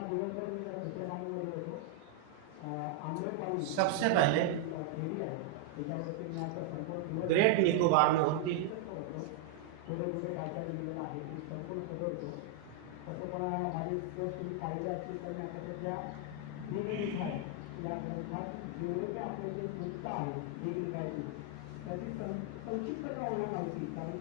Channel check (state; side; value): different; both; correlation 0.00